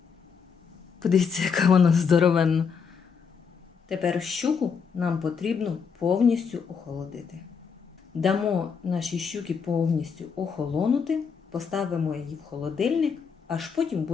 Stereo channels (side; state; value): right; quieter; 6.1 dB